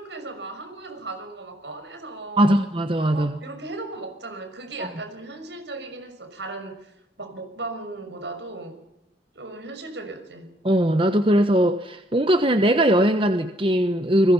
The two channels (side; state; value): both; normal; correlation 0.68